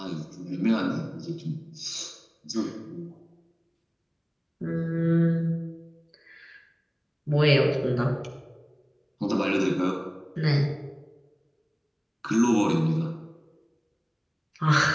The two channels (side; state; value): both; identical; correlation 1.00